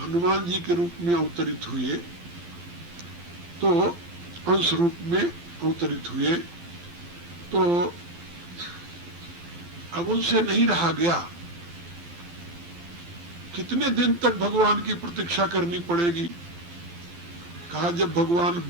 जी के रूप में अवतरित हुए, तो अंश रूप में अवतरित हुए, तो अब उनसे नहीं रहा गया। कितने दिन तक भगवान की प्रतीक्षा करनी पड़ेगी? कहा जब भगवान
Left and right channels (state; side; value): late; left; 12 ms